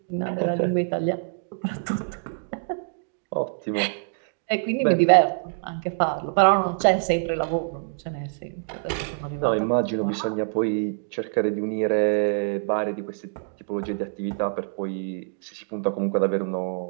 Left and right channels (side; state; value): left; silent; digital silence